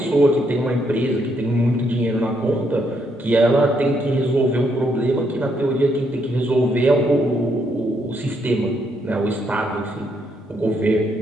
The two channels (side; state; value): both; normal; correlation 0.75